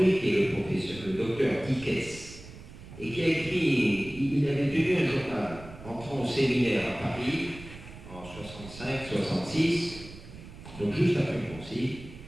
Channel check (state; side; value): noise; right; rumble, 16 dB below the sound